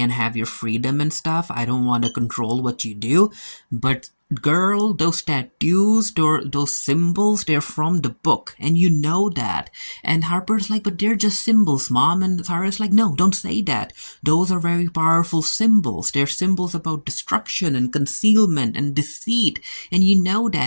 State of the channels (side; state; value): both; inverted; correlation -1.00